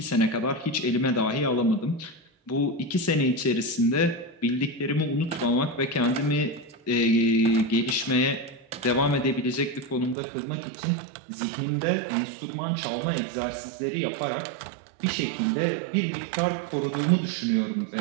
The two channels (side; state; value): left; drops out; at 10.2 s